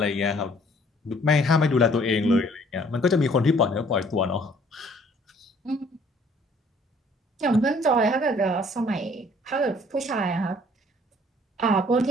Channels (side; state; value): both; normal; correlation 0.58